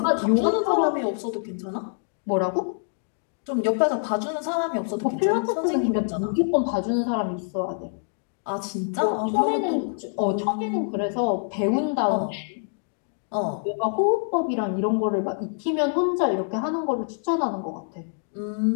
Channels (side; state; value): right; silent; 61 dB below the other